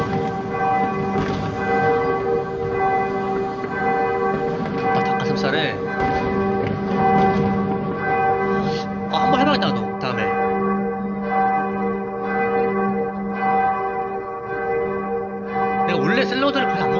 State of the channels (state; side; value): identical; both; correlation 1.00